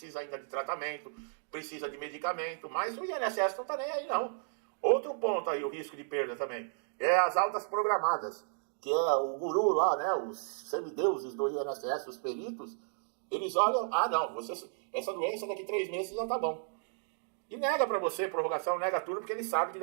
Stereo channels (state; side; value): silent; left; digital silence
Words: ainda de tratamento, precisa de medicamento, mas o INSS não está nem aí, não. Outro ponto aí, o risco de perda também, é as altas programadas, que é o guru lá, né, os semideuses do INSS, os peritos, eles olham, não, essa doença daqui 3 meses já tá bom. E nega pra você prorrogação, nega tudo, porque ele sabe que